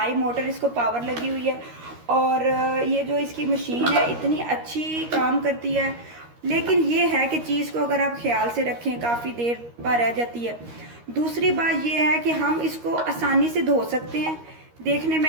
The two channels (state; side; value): late; left; 13 ms